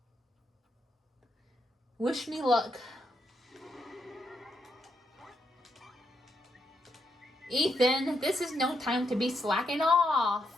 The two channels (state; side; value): normal; both; correlation 0.79